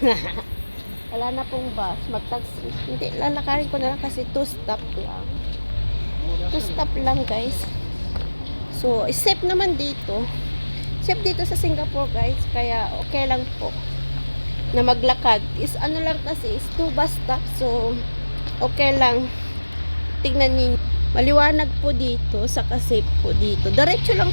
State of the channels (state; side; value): inverted; both; correlation -1.00